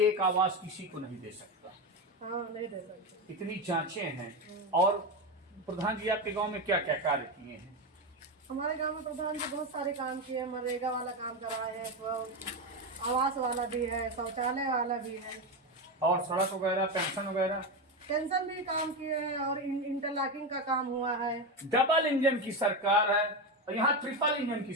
एक आवास किसी को नहीं दे सकता। हाँ, नहीं दे सकते। इतनी जांचें हैं। और प्रधान जी आपके गांव में क्या क्या कार्य किए हैं? हमारे गांव में प्रधान जी बहुत सारे काम किए हैं। मनरेगा वाला काम कराए हैं, तो आवास वाला भी है, शौचालय वाला भी है, और सड़क वगैरह, पेंशन वगैरह, पेंशन भी काम किए हैं, और इंटरलॉकिंग का काम हुआ है। डबल इंजन की सरकार है और यहाँ ट्रिपल इंजन की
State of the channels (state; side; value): normal; both; correlation 0.14